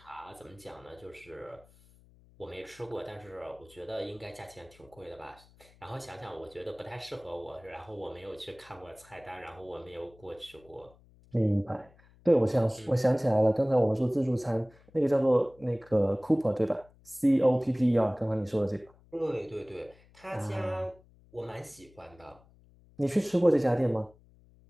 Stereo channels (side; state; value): left; noise; hum, 27 dB below the sound